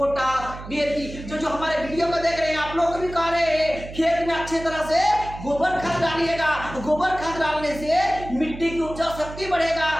डीएपी, जो हमारे वीडियो को देख रहे हैं आप लोग भी कह रहे हैं खेत में अच्छे तरह से गोबर खाद डालिएगा। गोबर खाद डालने से मिट्टी की उपजाऊ शक्ति बढ़ेगा।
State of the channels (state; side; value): noise; right; hum, 12 dB below the sound